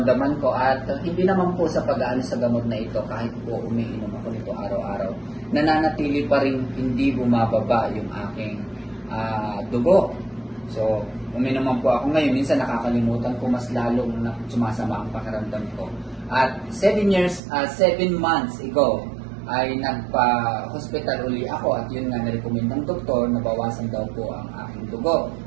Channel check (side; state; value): left; drops out; at 17.4 s